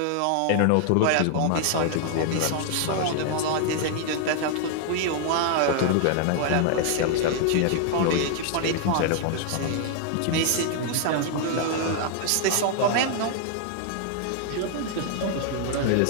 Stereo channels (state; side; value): different; both; correlation 0.00